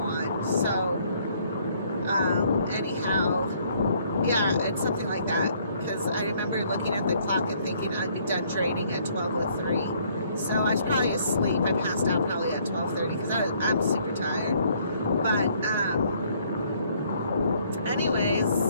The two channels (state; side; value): inverted; both; correlation -0.64